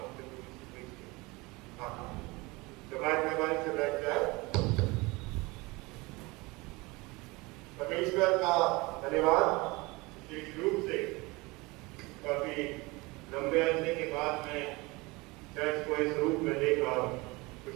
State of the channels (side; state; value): left; quieter; 23.9 dB